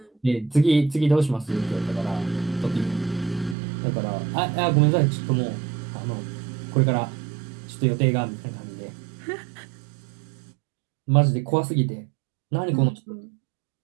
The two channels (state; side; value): drops out; left; at 3.6 s